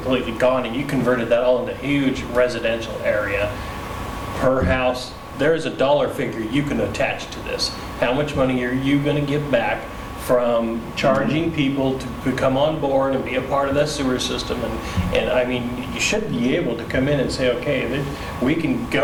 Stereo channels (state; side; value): identical; both; correlation 1.00